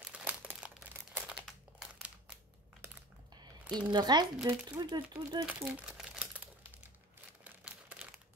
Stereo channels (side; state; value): both; normal; correlation 0.39